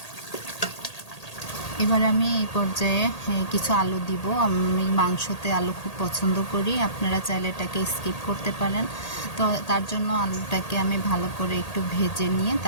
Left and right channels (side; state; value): right; late; 1.8 ms